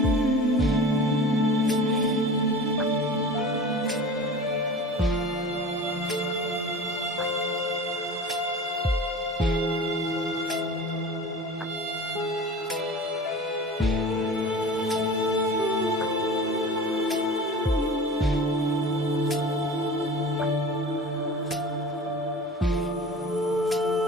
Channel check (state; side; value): normal; both; correlation 0.38